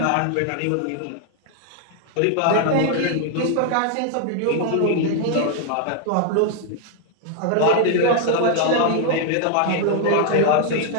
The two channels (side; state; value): both; different; correlation 0.00